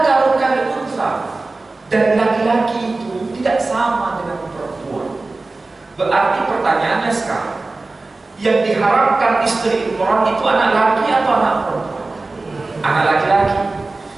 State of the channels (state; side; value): quieter; left; 3.4 dB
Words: kal unsa, dan laki-laki itu tidak sama dengan perempuan. Berarti pertanyaannya sekarang, yang diharapkan istri Imran itu anak laki atau anak perempuan? Anak laki-laki.